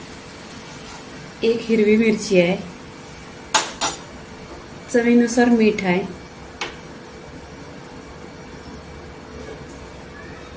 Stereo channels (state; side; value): identical; both; correlation 1.00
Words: 1 हिरवी मिरची आहे, चवीनुसार मीठ आहे,